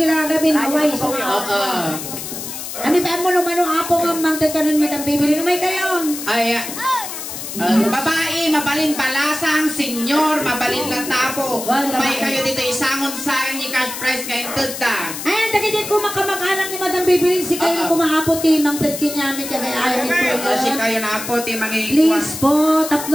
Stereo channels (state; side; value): noise; left; hiss, 8 dB below the sound